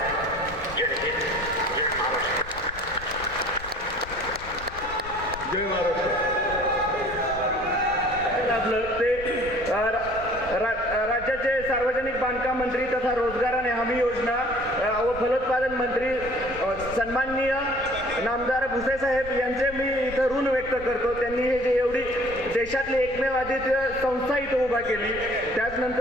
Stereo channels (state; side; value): noise; left; rumble, 15 dB below the sound